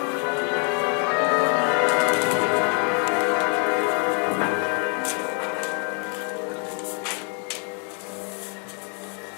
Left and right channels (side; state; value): right; quieter; 39.2 dB